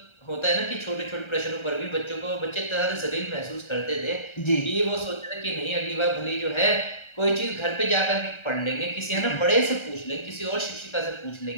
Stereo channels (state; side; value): late; right; 1.3 ms